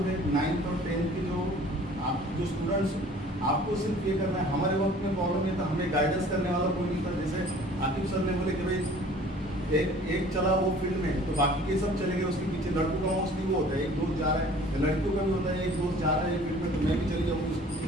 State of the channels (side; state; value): both; normal; correlation 0.50